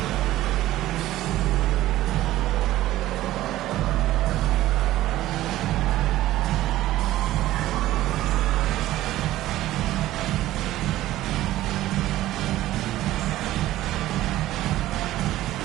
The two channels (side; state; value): left; quieter; 15.2 dB